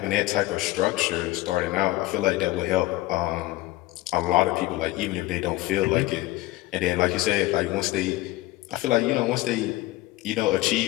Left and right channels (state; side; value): quieter; right; 18.0 dB